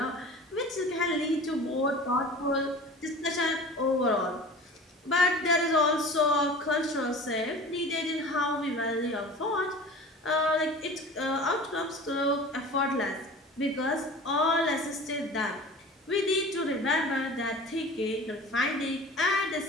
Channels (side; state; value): both; normal; correlation 0.39